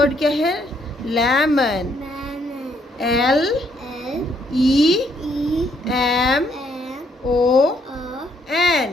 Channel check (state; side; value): normal; both; correlation 0.71